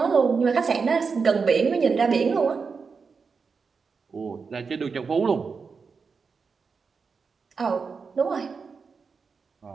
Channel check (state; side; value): quieter; left; 5.2 dB